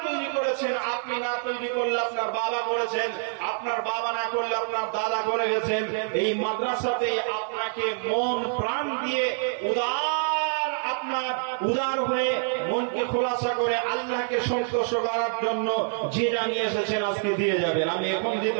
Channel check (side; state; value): left; silent; 60 dB below the other